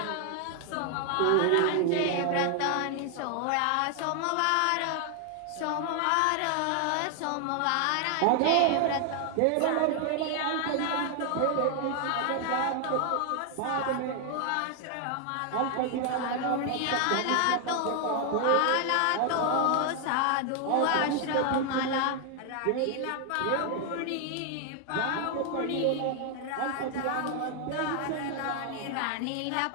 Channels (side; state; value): both; different; correlation 0.00